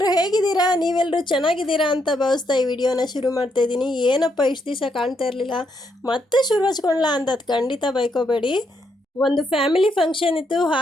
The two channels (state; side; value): normal; both; correlation 0.77